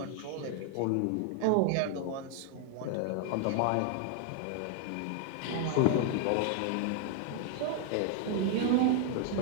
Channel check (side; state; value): both; different; correlation 0.00